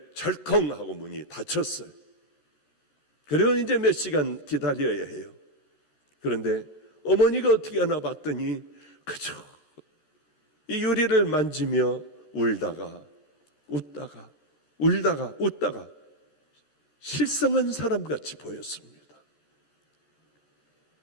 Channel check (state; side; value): late; right; 13 ms